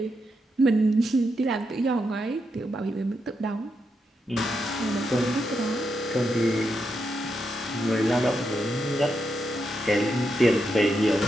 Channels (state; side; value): normal; both; correlation 0.83